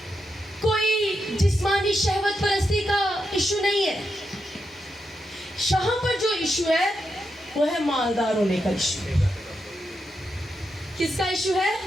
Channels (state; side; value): normal; both; correlation 0.85